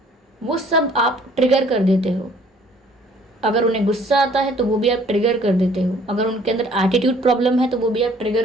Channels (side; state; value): both; normal; correlation 0.57